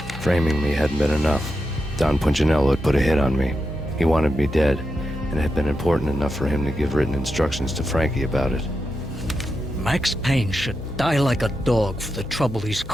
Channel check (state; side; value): noise; right; hum, 22 dB below the sound